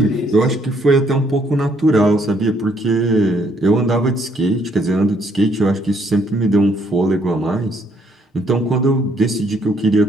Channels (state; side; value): normal; both; correlation 0.68